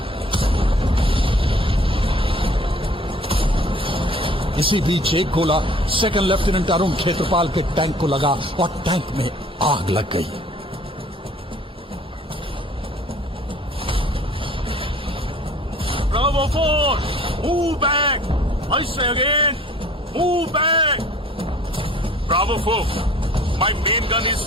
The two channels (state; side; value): normal; both; correlation 0.51